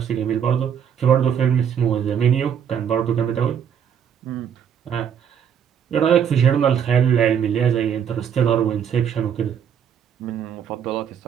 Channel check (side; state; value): left; quieter; 8.2 dB